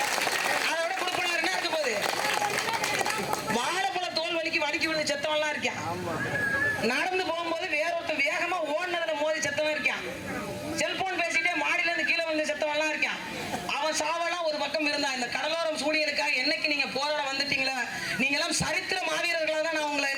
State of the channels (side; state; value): both; identical; correlation 1.00